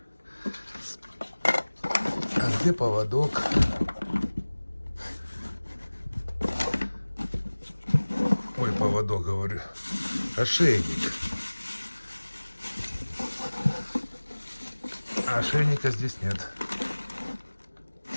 А где поводок? Ой, поводок, говорю. Ошейник. А ошейника здесь нет.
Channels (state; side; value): inverted; both; correlation -1.00